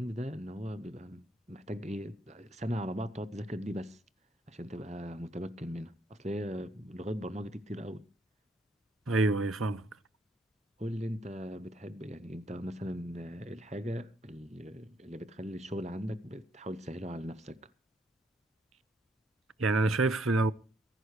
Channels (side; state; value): both; normal; correlation 0.70